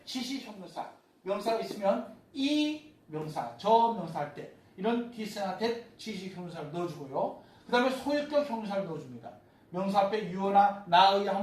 지시형용사. 명사가 있으면 이 명사, 저 명사 할 때 이런 this나 that 지시형용사를 넣어주고요. 그 다음에 소유격 형용사를 넣어줍니다. 명사 앞에 you나 나의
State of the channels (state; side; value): identical; both; correlation 1.00